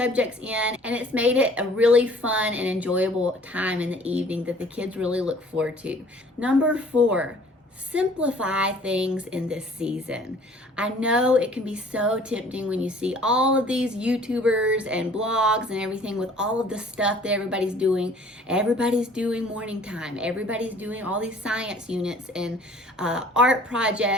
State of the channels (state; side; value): normal; both; correlation 0.53